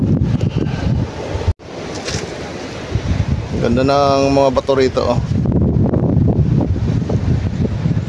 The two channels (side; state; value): both; identical; correlation 1.00